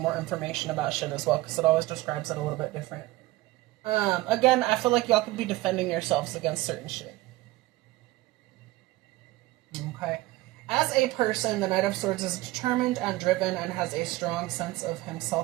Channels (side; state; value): left; quieter; 18.5 dB